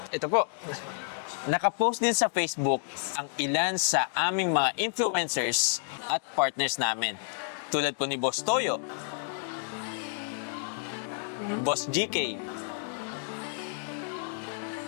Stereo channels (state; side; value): silent; right; digital silence